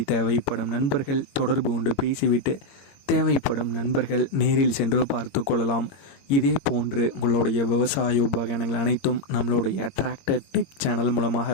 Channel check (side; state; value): right; late; 22 ms